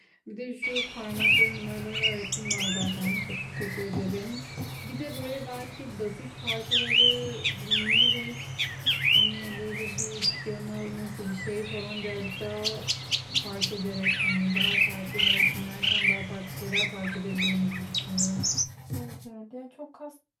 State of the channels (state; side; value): identical; both; correlation 1.00